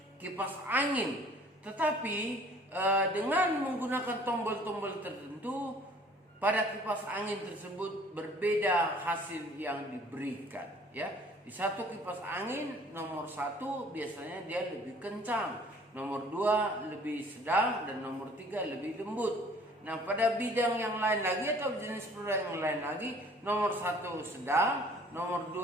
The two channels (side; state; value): both; normal; correlation 0.53